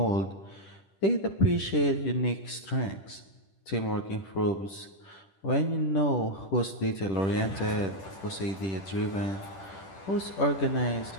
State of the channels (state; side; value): late; right; 10 ms